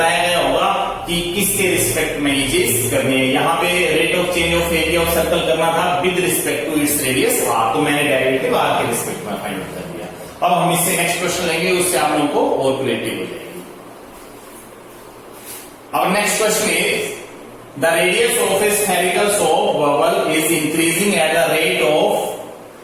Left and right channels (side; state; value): both; identical; correlation 1.00